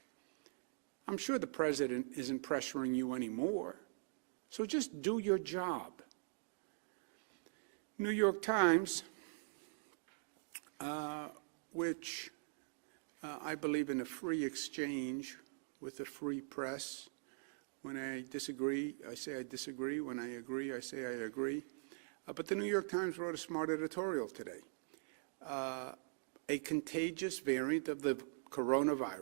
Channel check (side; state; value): left; silent; digital silence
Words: I'm sure the president isn't pressuring you anymore, so just do your job. New York Times, which I believe in a free exchange with the free press. When I disagree, I say I disagree. When I agree, I say I agree. But the New York Times wrote a smart editorial today. A contagious variant of the